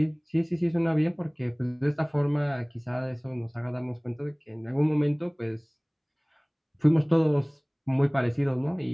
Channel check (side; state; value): both; identical; correlation 1.00